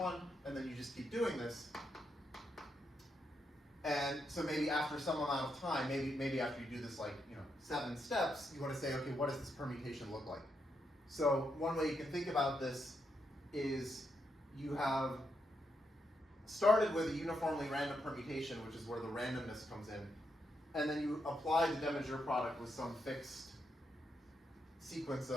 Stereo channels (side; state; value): both; normal; correlation 0.81